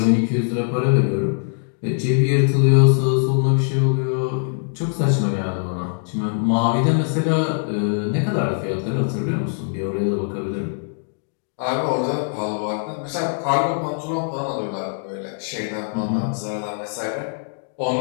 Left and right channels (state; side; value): silent; right; digital silence